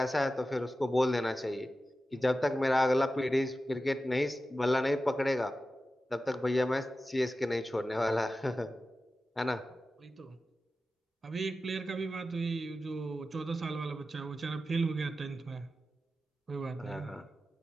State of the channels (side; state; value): both; normal; correlation 0.93